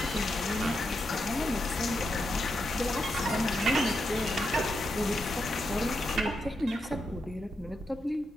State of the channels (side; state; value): both; normal; correlation 0.84